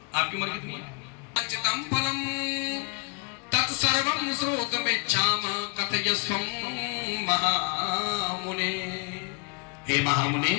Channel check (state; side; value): quieter; right; 33.7 dB